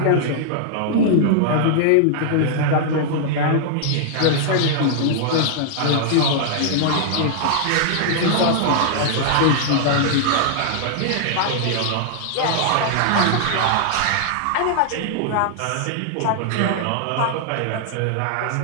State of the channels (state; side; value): different; both; correlation -0.01